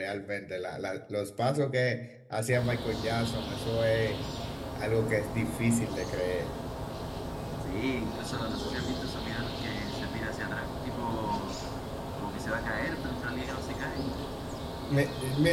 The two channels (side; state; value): both; identical; correlation 1.00